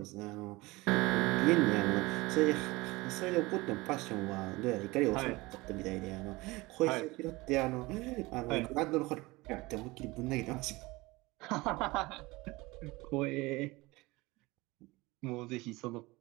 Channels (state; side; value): quieter; left; 22.0 dB